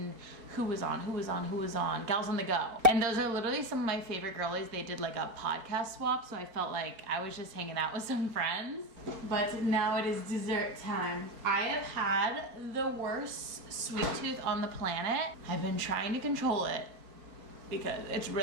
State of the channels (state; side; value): late; left; 4.5 ms